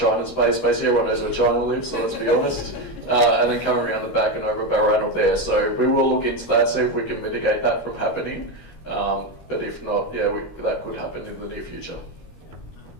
Space. Basically, everyone knows where China lives, so let's be honest. And then coming around the back and over Balranald there. So we will look into that, see if we can mitigate that from happening. But if not, yeah, that could happen in the near future.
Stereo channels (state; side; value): late; right; 13 ms